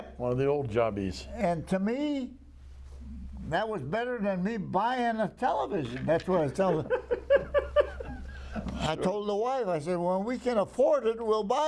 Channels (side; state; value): both; identical; correlation 1.00